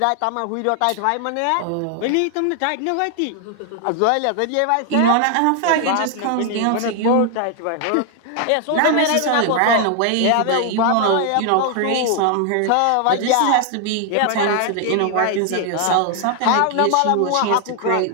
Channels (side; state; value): both; different; correlation 0.00